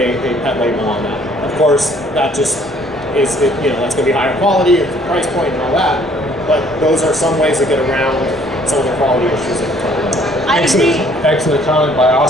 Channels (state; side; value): normal; both; correlation 0.60